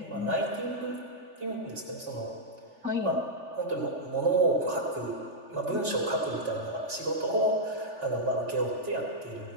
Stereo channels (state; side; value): late; left; 3.4 ms